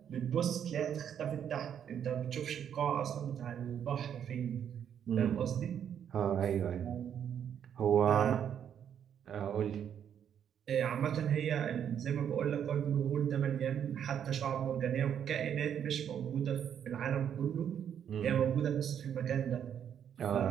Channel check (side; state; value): left; quieter; 8.9 dB